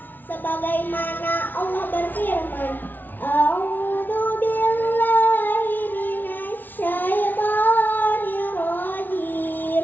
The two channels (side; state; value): right; late; 0.088 ms